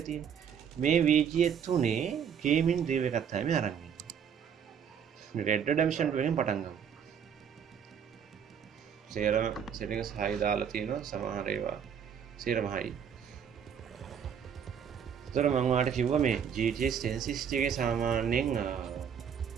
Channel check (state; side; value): quieter; left; 7.8 dB